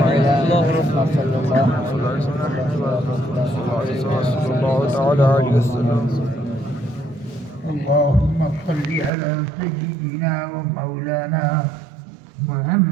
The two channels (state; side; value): drops out; left; at 9.1 s